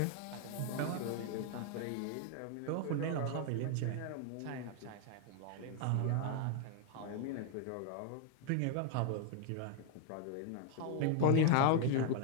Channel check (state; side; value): different; both; correlation 0.00